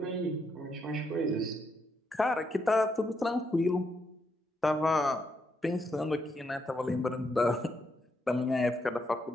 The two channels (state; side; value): normal; both; correlation 0.78